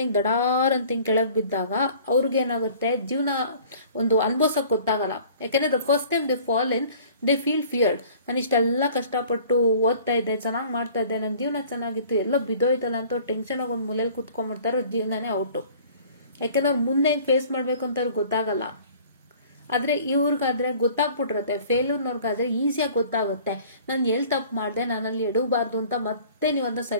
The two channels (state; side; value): inverted; both; correlation -0.50